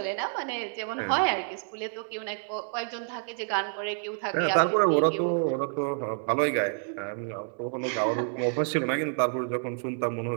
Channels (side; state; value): left; silent; digital silence